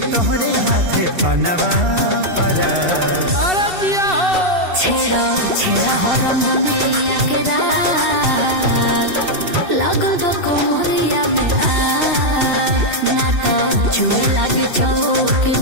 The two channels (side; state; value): left; late; 2.7 ms